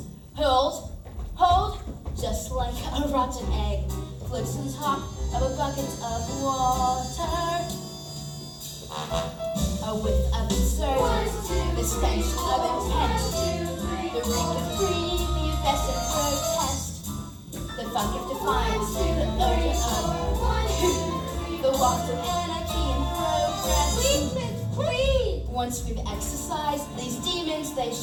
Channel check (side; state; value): both; identical; correlation 1.00